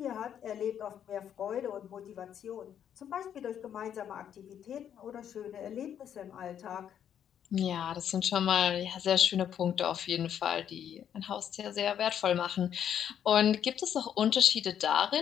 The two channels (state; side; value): quieter; right; 9.3 dB